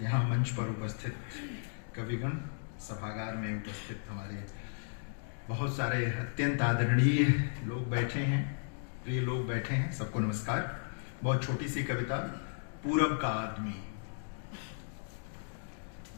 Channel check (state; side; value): silent; right; digital silence